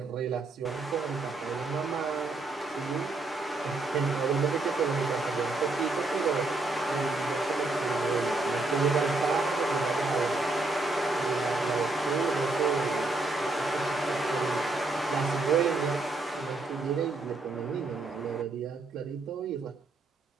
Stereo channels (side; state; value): left; quieter; 3.2 dB